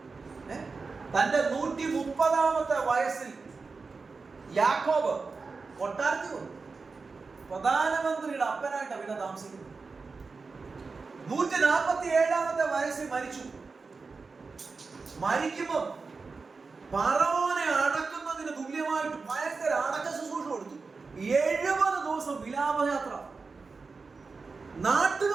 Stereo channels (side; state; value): left; quieter; 4.4 dB